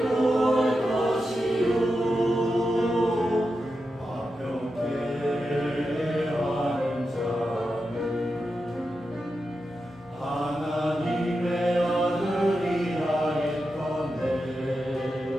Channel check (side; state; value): both; normal; correlation 0.89